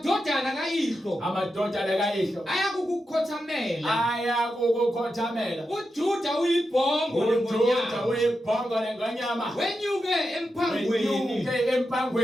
kayihlo ayakukukhothamela. uJuda uyibhongo lengonyama. wenyuke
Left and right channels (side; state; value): both; normal; correlation 0.88